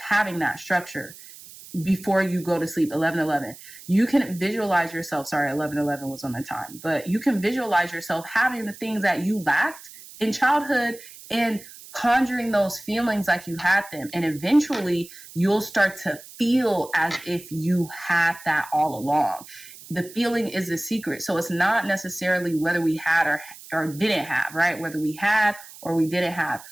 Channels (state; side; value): noise; right; hiss, 18 dB below the sound